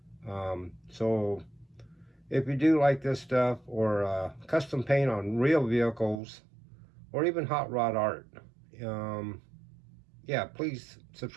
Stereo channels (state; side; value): drops out; left; at 6.2 s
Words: So if you do like this stuff, or custom paint on real vehicles, or even hot rod art, yeah, please